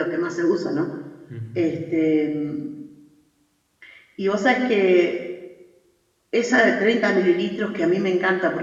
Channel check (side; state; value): both; identical; correlation 1.00